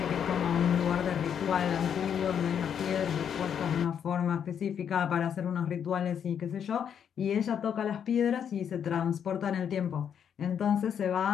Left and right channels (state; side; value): quieter; right; 8.2 dB